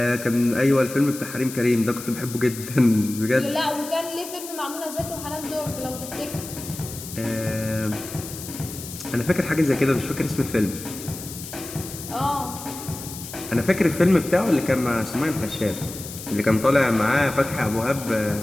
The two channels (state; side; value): noise; left; hiss, 11 dB below the sound